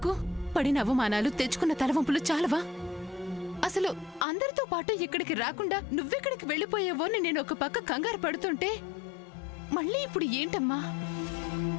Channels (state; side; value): drops out; right; at 4.2 s